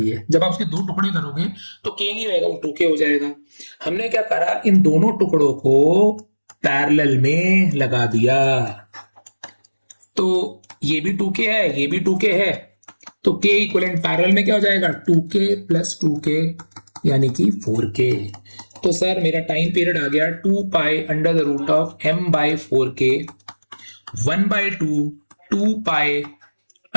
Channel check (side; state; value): both; inverted; correlation -1.00